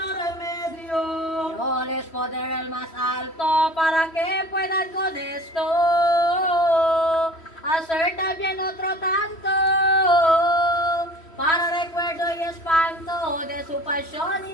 remedio. Yo les poder el más alto para que puedan con esto hacer también otro tanto, para recuerdo y espanto de su pasión y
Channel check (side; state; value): right; late; 3.1 ms